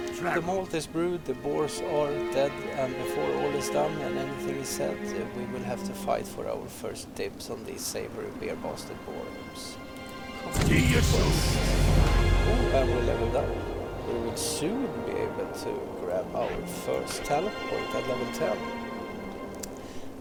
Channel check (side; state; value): both; identical; correlation 1.00